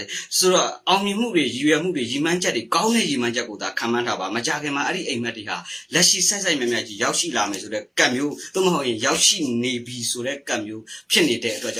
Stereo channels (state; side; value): identical; both; correlation 1.00